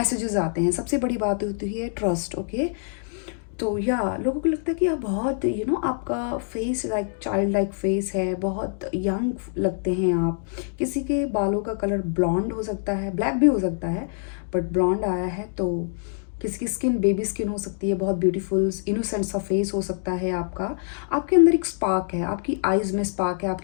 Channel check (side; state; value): right; silent; digital silence